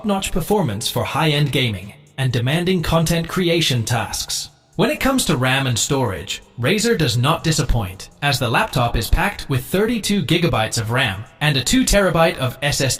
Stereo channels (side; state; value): both; identical; correlation 1.00